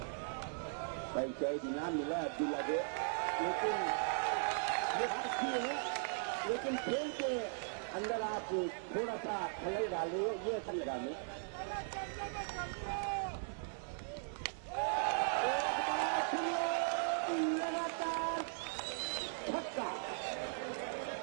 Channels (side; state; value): left; silent; 52 dB below the other